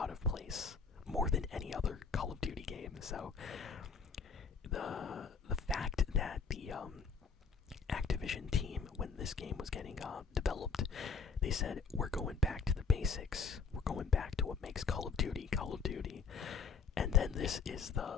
of place, more than any other Call of Duty game. So the fact that the Activision team, when this game was getting developed, they said, we're going back to the basics, we're going back to what makes Call of Duty Call of Duty, and then this is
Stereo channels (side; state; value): right; quieter; 5.3 dB